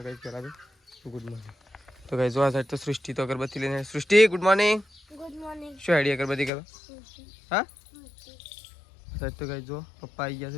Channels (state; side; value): drops out; right; at 6.5 s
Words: ગાઈસ પહેલાં તો ગુડ મોર્નિંગ. તો ગાઈસ જો આ સાઈડ તો સૃષ્ટિ તો અગરબત્તી લઈને. સૃષ્ટિ ગુડ મોર્નિંગ. Good morning. શું આઈડિયા અગરબત્તી કરો? હા સાહેબ તો ગાઈસ જો પપ્પા આવી ગયા છે